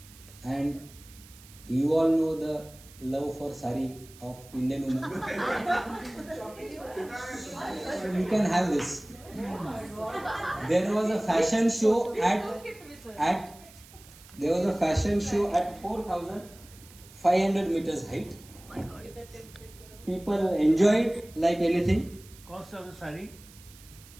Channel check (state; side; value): noise; right; hiss, 22 dB below the sound